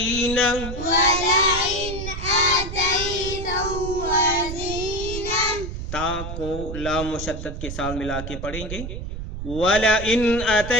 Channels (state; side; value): noise; right; rumble, 7 dB below the sound